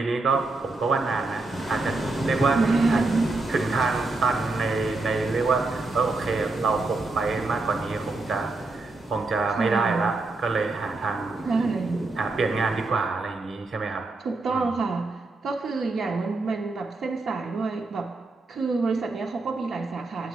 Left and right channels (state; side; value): quieter; left; 3.3 dB